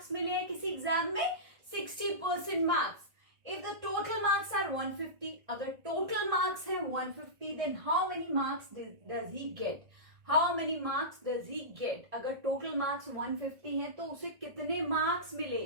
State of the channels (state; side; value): late; left; 1.6 ms